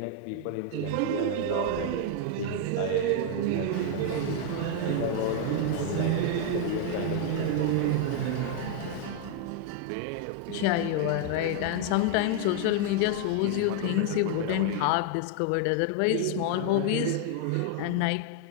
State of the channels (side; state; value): both; different; correlation 0.00